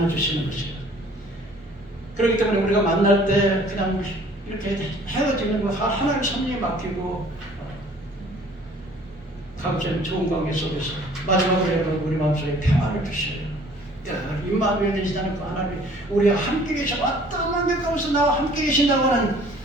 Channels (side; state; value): both; normal; correlation 0.54